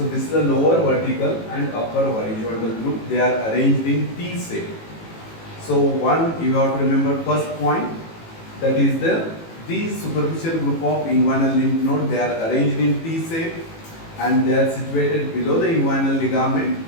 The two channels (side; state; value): right; late; 18 ms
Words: this is the lower vertical and upper horizontal group. They are arranged in T shape. So one you have to remember first point, that is these superficial group of inguinal lymph node, they are arranged in T shape and they are situated below the inguinal ligament